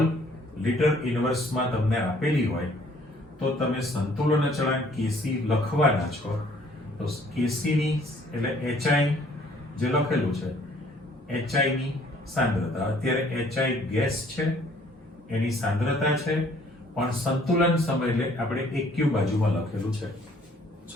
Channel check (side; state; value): both; normal; correlation 0.59